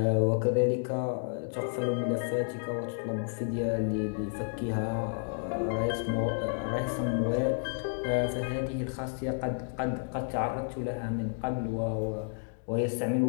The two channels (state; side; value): silent; right; digital silence